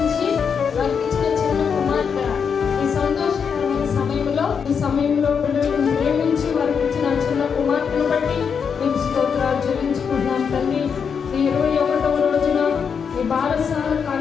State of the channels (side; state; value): right; quieter; 6.6 dB